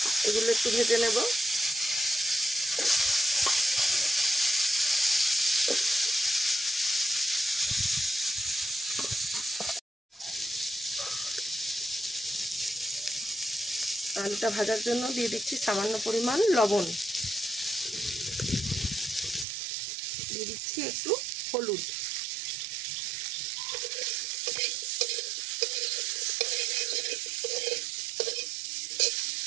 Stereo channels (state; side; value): drops out; left; at 19.5 s